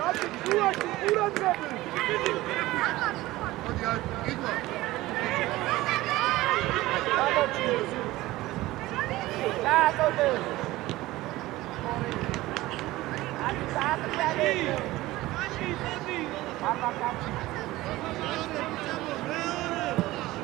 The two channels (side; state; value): left; quieter; 17.9 dB